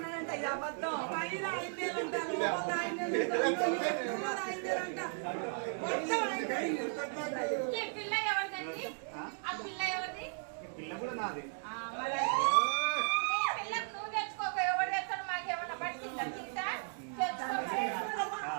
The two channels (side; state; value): left; silent; 54 dB below the other